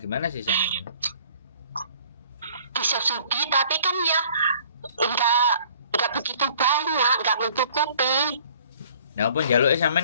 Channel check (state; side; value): inverted; both; correlation -0.54